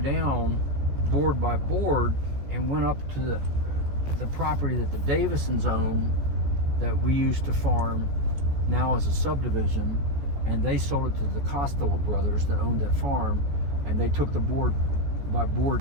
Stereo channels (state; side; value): late; left; 14 ms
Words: board by board and went up to the property that the Davisons own, that we used to farm now as a subdivision, and they sold it to the Costello brothers that owned that farm, and they took the board by